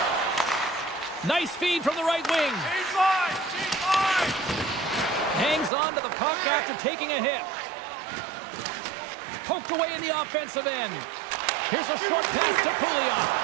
Nice feed from the right wing. Change line! Change line! Hangs on to the puck after taking a hit. Poked away in the offensive end. Here's a short pass to Pouliot.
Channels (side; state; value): left; drops out; at 5.7 s